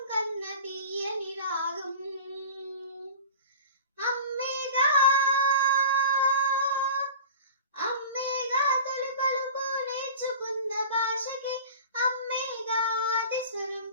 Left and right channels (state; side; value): inverted; both; correlation -0.37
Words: కన్న తీయని రాగం అమ్మేగా అమ్మేగా తొలి పలుకు నేర్చుకున్న భాషకి అమ్మేగా ఆది స్వరం